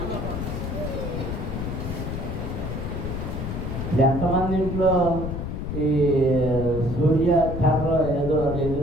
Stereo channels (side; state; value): left; noise; rumble, 4 dB below the sound